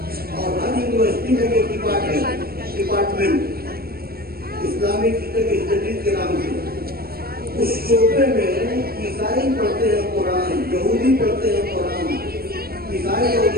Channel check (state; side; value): late; left; 0.44 ms